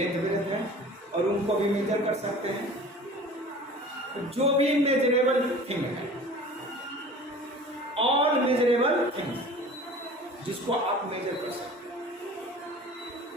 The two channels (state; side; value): normal; both; correlation 0.42